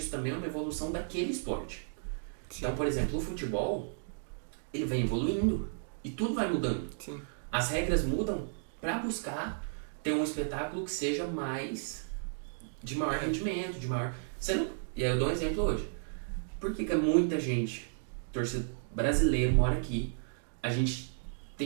também é uma evolução daquele esporte. Sim. Então, por exemplo, o futebol, ele vem evoluindo e tudo vai mudando. Sim. As regras mudam para buscar ter um espetáculo que seja de maior rendimento, de maior... E aí eu dou um exemplo hoje. Por que muita gente, torcedor brasileiro, mora aqui, a gente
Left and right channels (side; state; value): left; silent; digital silence